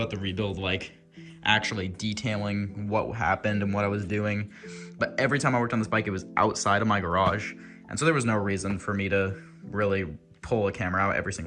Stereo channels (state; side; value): identical; both; correlation 1.00